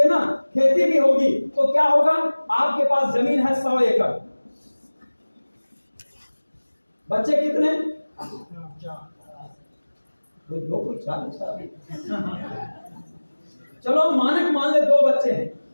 ना, खेती भी होगी तो क्या होगा? आपके पास जमीन है 100 एकड़, बच्चे कितने? चलो मानक मान ले 2 बच्चे हैं,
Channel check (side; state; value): both; inverted; correlation -1.00